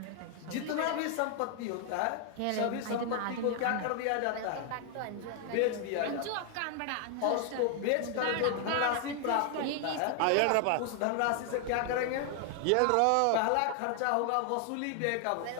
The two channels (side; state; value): both; different; correlation 0.00